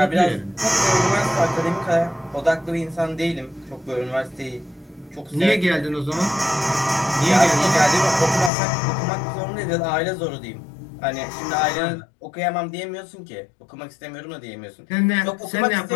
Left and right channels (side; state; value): right; drops out; at 8.5 s